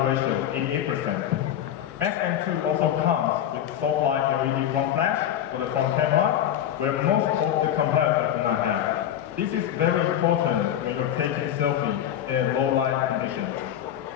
ratio, 88%. Max M2 also comes with soft light LED front flash for the front camera, where most of the competitors do not have. This is very important when you're taking selfie in low light conditions.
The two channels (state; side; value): quieter; right; 10.7 dB